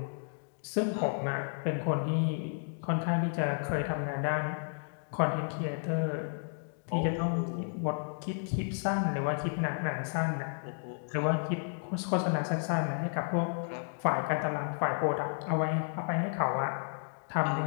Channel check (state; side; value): silent; right; digital silence